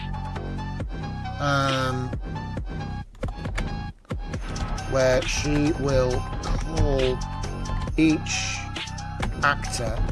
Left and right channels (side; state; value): both; identical; correlation 1.00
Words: Where she will call each actor